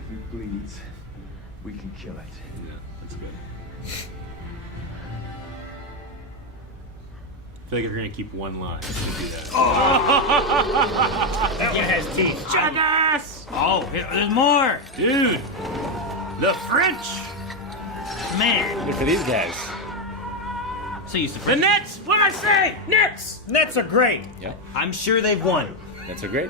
it bleeds, we can kill it. Yeah, that's good. I feel like if you're gonna keep one line, you do that. That one has teeth. Jackass! Oh, there's more! Dude! The French! Man, Look for these guys. so used to The French. Nets! What did I say? Nets! Nets are great. Yep. I'm sure they've won. That's a great.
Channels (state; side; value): normal; both; correlation 0.06